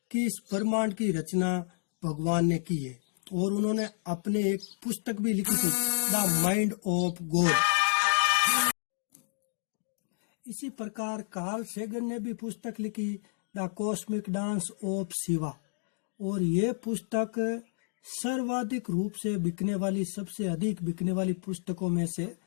कि इस ब्रह्मांड की रचना भगवान ने की है, और उन्होंने अपने एक पुस्तक भी लिखी थी, द माइंड ऑफ गॉड। इसी प्रकार कार्ल सेगन ने भी पुस्तक लिखी, the cosmic dance of Shiva, और ये पुस्तक सर्वाधिक रूप से बिकने वाली, सबसे अधिक बिकने वाली पुस्तकों में से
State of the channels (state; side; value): silent; right; digital silence